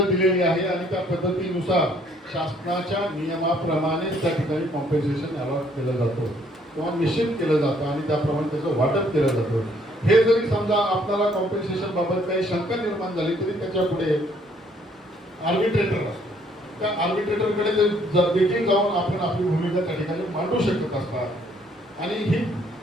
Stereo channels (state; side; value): normal; both; correlation 0.64